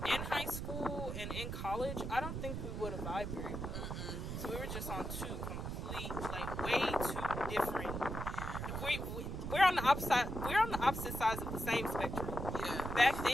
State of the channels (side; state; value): right; noise; rumble, 4 dB below the sound